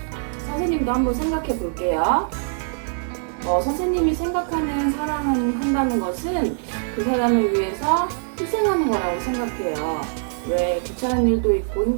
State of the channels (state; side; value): silent; left; 64 dB below the other